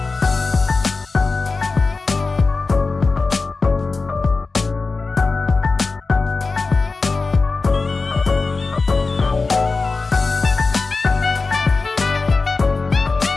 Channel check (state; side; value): quieter; right; 4.0 dB